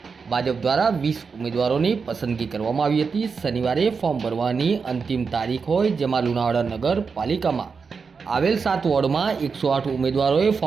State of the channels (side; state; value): left; quieter; 5.3 dB